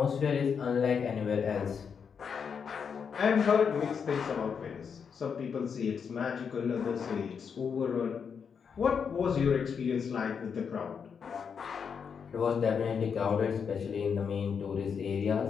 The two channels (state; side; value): quieter; right; 6.6 dB